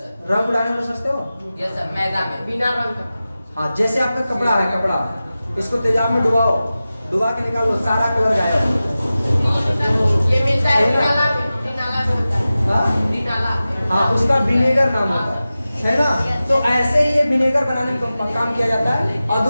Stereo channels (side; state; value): both; inverted; correlation -0.95